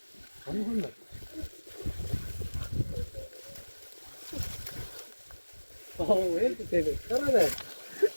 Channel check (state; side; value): inverted; both; correlation -1.00